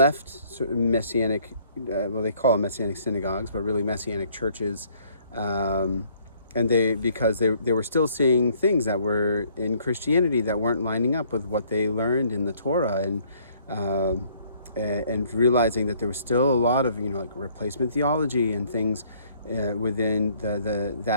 sort of messianic, well, they call them messianic synagogues, but really messianic churches, and because they were still seeing things that were in Christianity that weren't lining up with what they learned in the Torah, and realizing that there was still a lot of like replacement theology and things within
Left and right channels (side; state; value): both; inverted; correlation -0.62